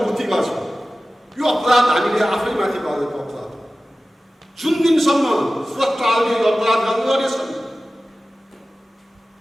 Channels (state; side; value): normal; both; correlation 0.96